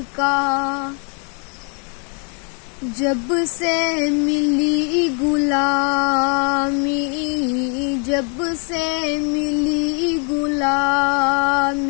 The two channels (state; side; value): quieter; right; 39.5 dB